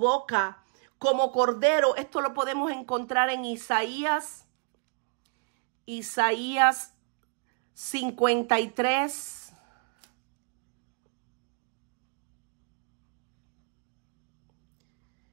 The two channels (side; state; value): left; quieter; 37.1 dB